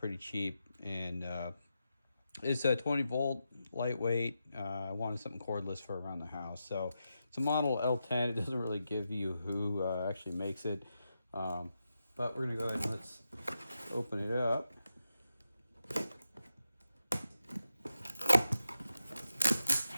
cheap, and it's a 20 volt, lightweight. I wanted something cordless for around the house, so it's a model L10. It doesn't really give you who actually makes it, but we're going to go ahead and let's open it up.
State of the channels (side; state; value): both; inverted; correlation -0.87